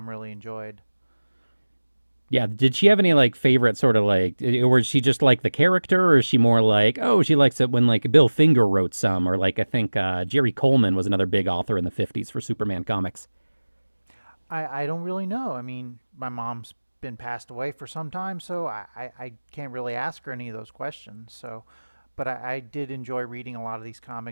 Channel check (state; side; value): inverted; both; correlation -1.00